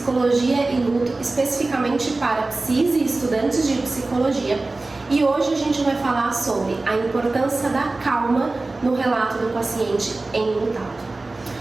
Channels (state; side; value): quieter; left; 3.2 dB